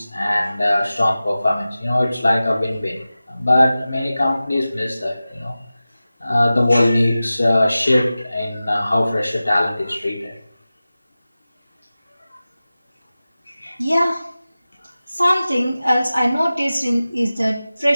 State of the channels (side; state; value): both; inverted; correlation -0.96